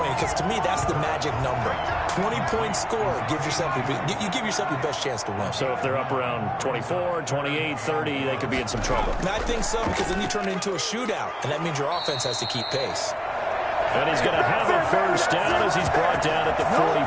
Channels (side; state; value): both; identical; correlation 1.00